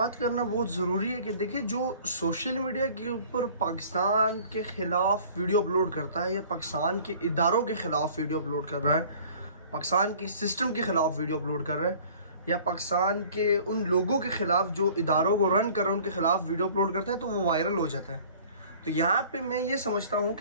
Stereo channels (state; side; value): inverted; both; correlation -0.50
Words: करना बहुत ज़रूरी है कि देखिए, जो सोशल मीडिया के ऊपर पाकिस्तान के ख़िलाफ़ वीडियो अपलोड करता है या पाकिस्तान के इदारों के ख़िलाफ़ वीडियो अपलोड कर रहा है, पाकिस्तान के सिस्टम के ख़िलाफ़ वीडियो अपलोड कर रहा है, या पाकिस्तान के उन लोगों के ख़िलाफ़ जो इदारों को रन कर रहे हैं उनके ख़िलाफ़ वीडियो अपलोड करता है, तो वो वायरल हो जाता है। तो यहाँ पे मैं ये समझता हूँ